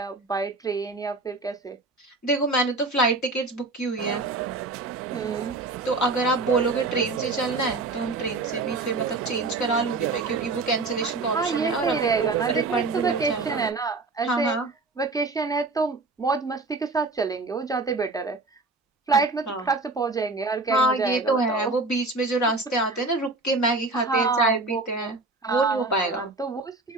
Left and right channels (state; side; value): quieter; left; 3.4 dB